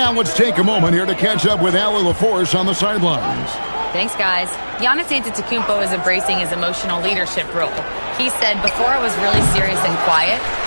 let's take a moment here to catch up with Allie LaForce on the sidelines. Thanks, guys. Giannis Antetokounmpo is embracing his emotional leadership role. He said, before I was really serious and quiet,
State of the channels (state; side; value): inverted; both; correlation -1.00